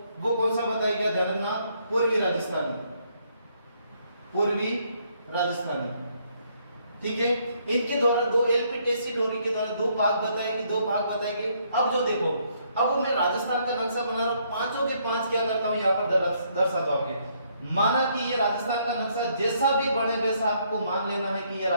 वो कौन सा बताया गया, ध्यान रखना, पूर्वी राजस्थानी। ठीक है, इनके द्वारा 2 एलपी टेस्सीटोरी के द्वारा 2 भाग बताए गए। अब जो देखो, अब मैं राजस्थान का नक्शा बना रहा हूं, पांचों के 5 क्या करता हूं, यहाँ पर दर्शाता हूं आपके। माना कि ये राजस्थान का नक्शा जैसा भी बने वैसा आपको मान लेना है कि ये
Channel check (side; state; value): both; inverted; correlation -0.70